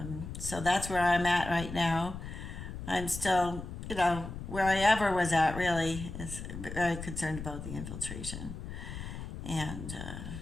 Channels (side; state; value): left; noise; rumble, 8 dB below the sound